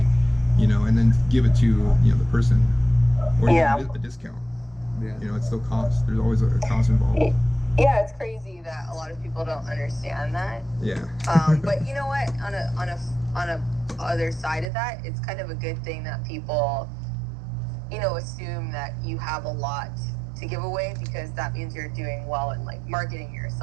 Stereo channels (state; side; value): drops out; left; at 14.7 s